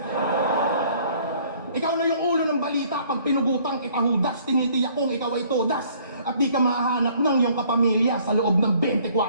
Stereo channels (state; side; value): inverted; both; correlation -0.59